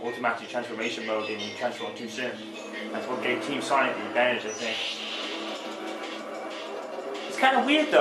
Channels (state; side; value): identical; both; correlation 1.00